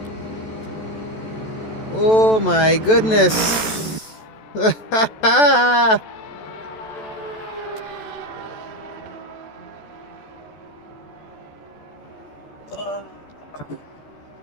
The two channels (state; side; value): late; right; 14 ms